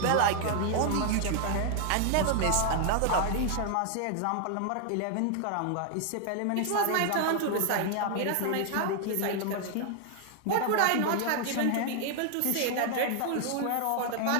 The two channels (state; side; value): different; both; correlation 0.00